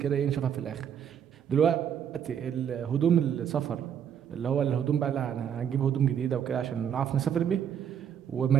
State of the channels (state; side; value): quieter; left; 8.6 dB